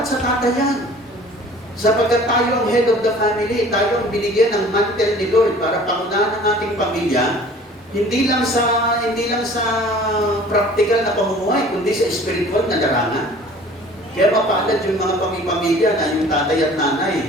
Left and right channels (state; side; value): normal; both; correlation 0.48